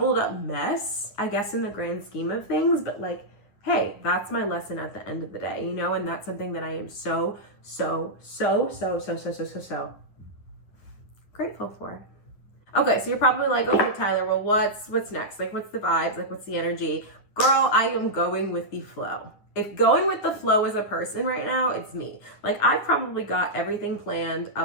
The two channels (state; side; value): late; right; 9.8 ms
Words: up mess, I guess, in the grand scheme of things. But like, hey, that's my lesson at the end of the day, you know? And that's something that I am so grateful for. Okay, so you're probably like, okay, Tyler, well, what's next? Like, what's the vibes? Like, what's the energy? Girl, I am going with the flow. If going with the flow is a person right now, it's me. Like, I've probably got everything planned